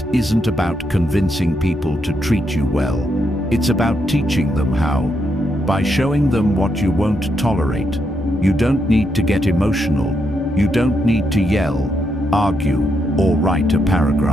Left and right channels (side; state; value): both; normal; correlation 0.80